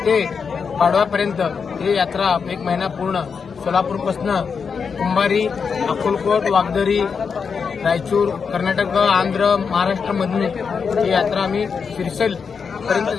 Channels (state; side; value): quieter; right; 5.9 dB